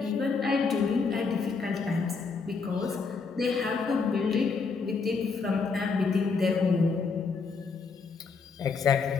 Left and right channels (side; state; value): right; quieter; 4.8 dB